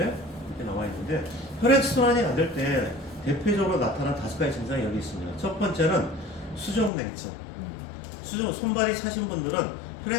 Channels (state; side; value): drops out; right; at 6.9 s